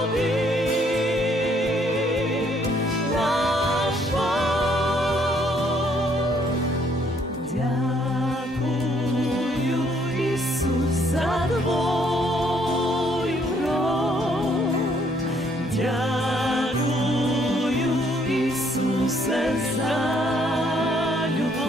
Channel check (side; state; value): both; normal; correlation 0.67